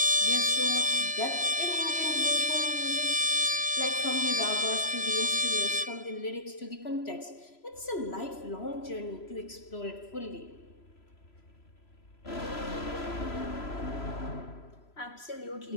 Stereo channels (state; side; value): late; right; 3.0 ms